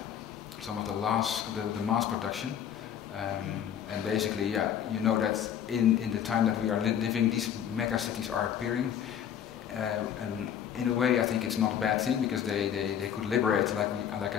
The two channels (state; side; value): quieter; right; 9.3 dB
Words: some of the mass production. And basically, you know that in the time that we are living, these mega cities are appearing. And in a way, I think it's not a bad thing, because they could liberate, like I